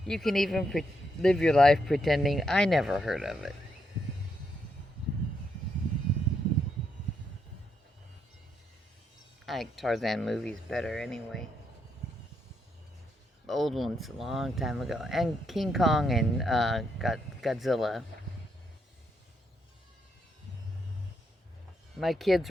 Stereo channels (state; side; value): normal; both; correlation 0.79